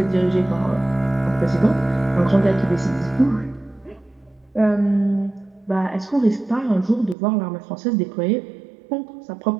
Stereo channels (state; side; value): drops out; left; at 7.2 s